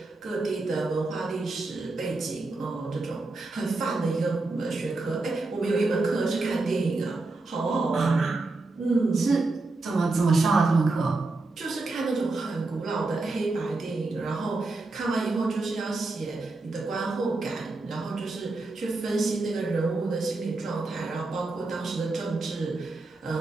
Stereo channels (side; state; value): left; quieter; 3.3 dB